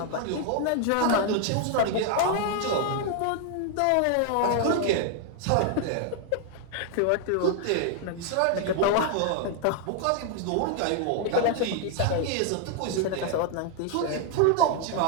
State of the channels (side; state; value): both; different; correlation 0.00